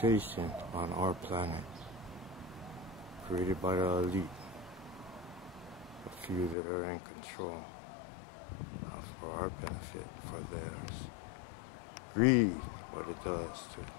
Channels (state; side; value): drops out; right; at 6.6 s